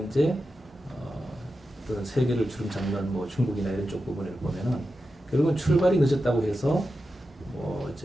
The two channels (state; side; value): normal; both; correlation 0.91